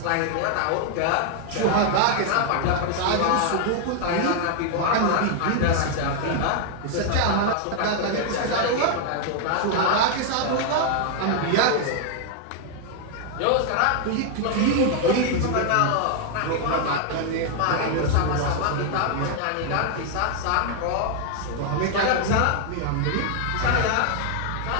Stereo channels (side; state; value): both; different; correlation 0.00